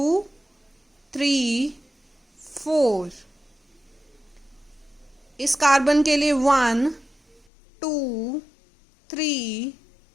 3 4। इस कार्बन के लिए 1 2 3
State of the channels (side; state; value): right; drops out; at 7.4 s